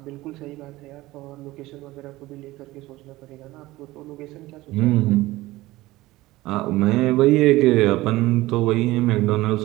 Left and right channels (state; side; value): quieter; left; 18.3 dB